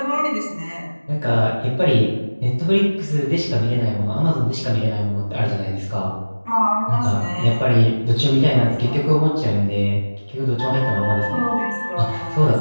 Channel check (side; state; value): both; inverted; correlation -1.00